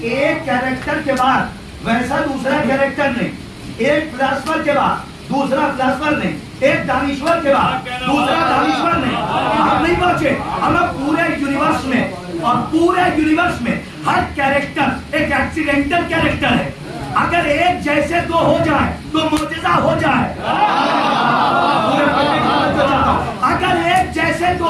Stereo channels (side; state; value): both; identical; correlation 1.00